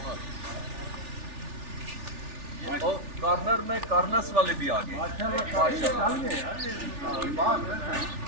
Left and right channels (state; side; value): late; left; 3.4 ms